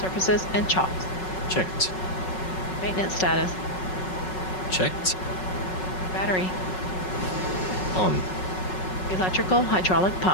and chalks. Checked. Maintenance status. Checked. Battery. On. Electrical hydraulic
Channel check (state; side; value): late; right; 5.4 ms